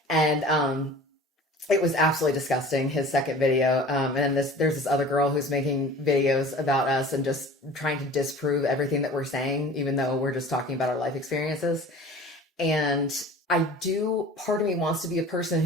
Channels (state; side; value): normal; both; correlation 0.42